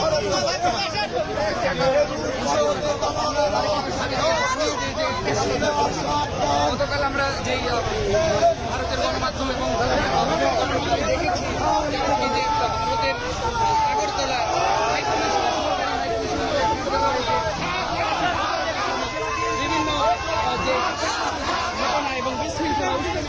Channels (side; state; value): both; identical; correlation 1.00